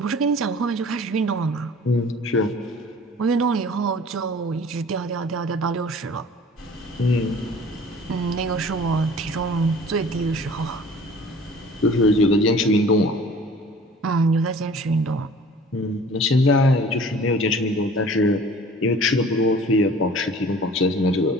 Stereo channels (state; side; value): normal; both; correlation 0.47